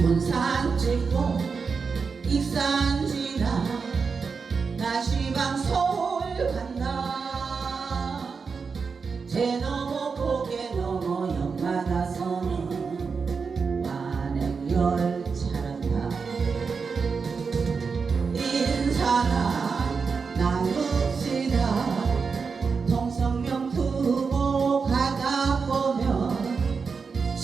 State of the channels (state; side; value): quieter; left; 5.2 dB